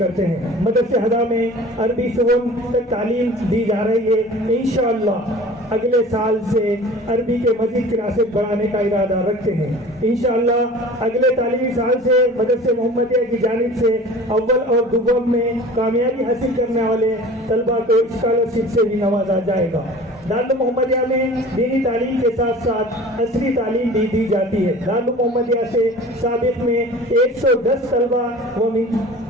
ہیں۔ مدرسہ ہدا میں عربی شعبوں تک تعلیم دی جا رہی ہے۔ انشاءاللہ اگلے سال سے عربی کے مزید کلاسز بڑھانے کا ارادہ رکھتے ہیں۔ انشاءاللہ اگلے تعلیمی سال سے مدرسہ محمدیہ کی جانب سے اول اور دوم میں کامیابی حاصل کرنے والے طلباء کو اسکالرشپ سے بھی نوازا جائے گا۔ دارالعلوم محمدیہ میں دینی تعلیم کے ساتھ ساتھ عصری تعلیم بھی دی جاتی ہے۔ دارالعلوم محمدیہ سے سابق میں 110 طلباء وہ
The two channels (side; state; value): both; normal; correlation 0.42